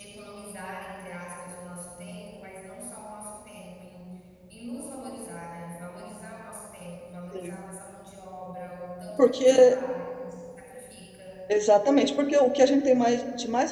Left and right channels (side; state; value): both; identical; correlation 1.00